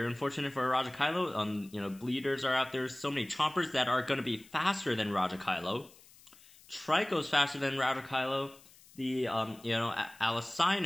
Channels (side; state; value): left; noise; hiss, 24 dB below the sound